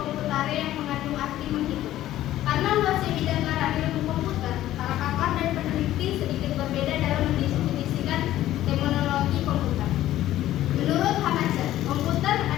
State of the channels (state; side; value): quieter; right; 13.8 dB